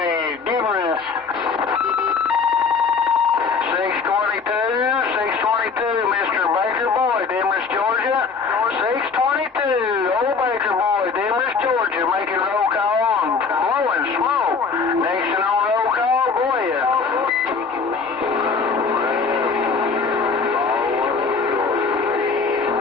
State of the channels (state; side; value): quieter; right; 5.1 dB